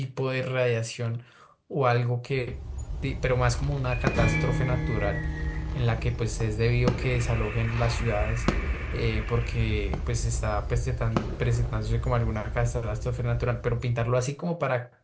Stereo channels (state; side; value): identical; both; correlation 1.00